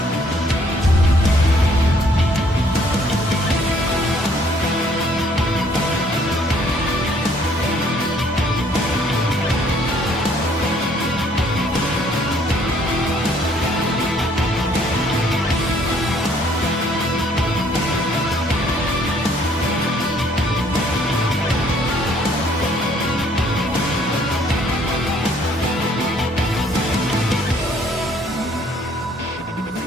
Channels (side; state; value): both; normal; correlation 0.63